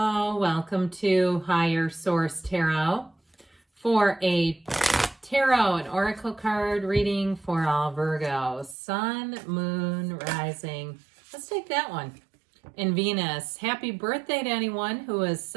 welcome to Higher Source Tarot for a tarot and oracle card reading for all Virgos. Sun, Moon, Rising. Let's take that one. And Venus. Happy birthday to anyone who is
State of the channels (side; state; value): left; drops out; at 8.8 s